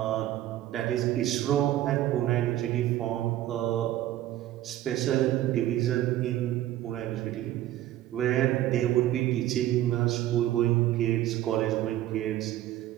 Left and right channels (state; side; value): quieter; left; 13.7 dB